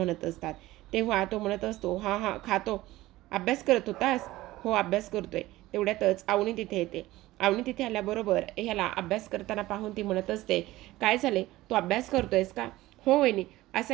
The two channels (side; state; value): left; quieter; 17.4 dB